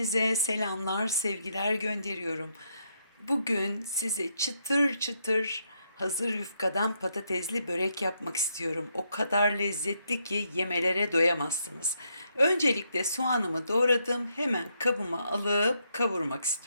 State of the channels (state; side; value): inverted; both; correlation -0.77